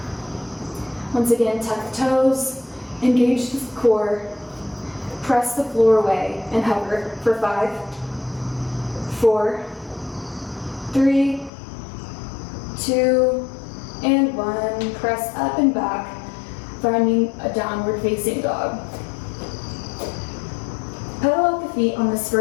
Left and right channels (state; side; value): drops out; right; at 11.5 s